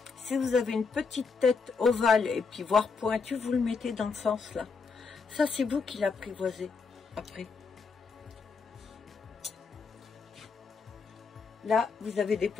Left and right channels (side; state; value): right; quieter; 4.9 dB